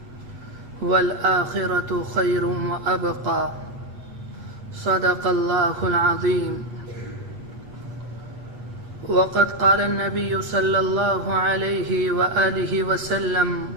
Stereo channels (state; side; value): late; left; 8.2 ms